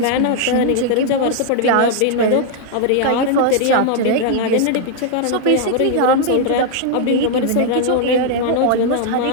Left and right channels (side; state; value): both; different; correlation -0.01